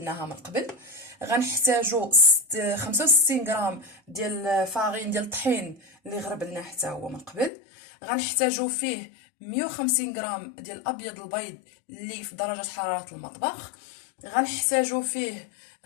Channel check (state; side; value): drops out; right; at 7.5 s